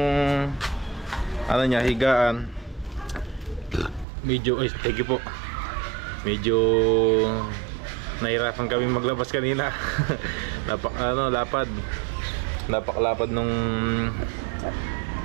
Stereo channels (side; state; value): left; drops out; at 4.0 s